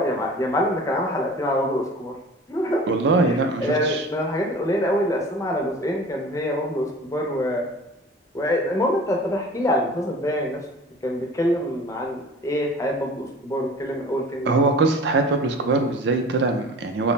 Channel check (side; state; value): both; normal; correlation 0.42